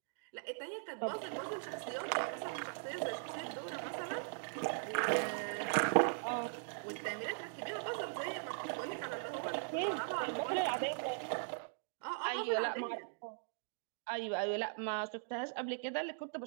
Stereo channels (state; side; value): silent; left; digital silence